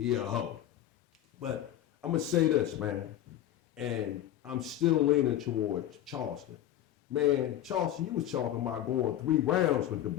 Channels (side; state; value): right; quieter; 12.3 dB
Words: a hoe. But I'm gonna say this, man, and I'm still leaning towards Charleston. Man, Charleston, you was talking about going 3 rounds with the